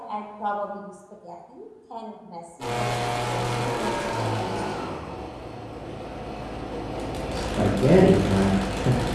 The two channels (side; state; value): both; identical; correlation 1.00